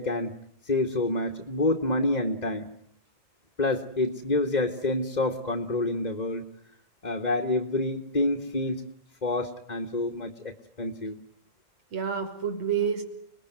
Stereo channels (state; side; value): late; right; 2.1 ms